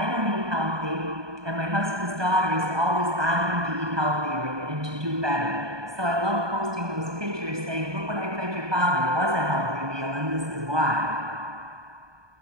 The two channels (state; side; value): late; left; 1.2 ms